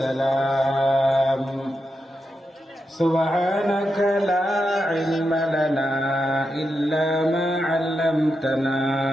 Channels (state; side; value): normal; both; correlation 0.86